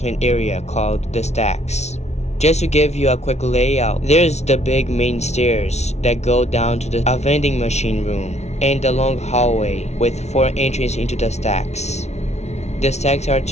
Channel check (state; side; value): late; right; 0.32 ms